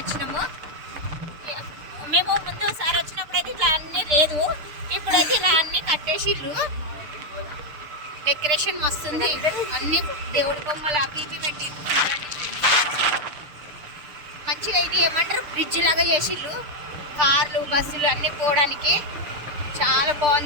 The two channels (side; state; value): left; late; 6.8 ms